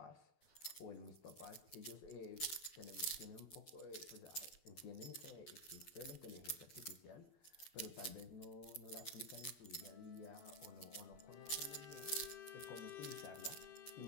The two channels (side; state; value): right; late; 12 ms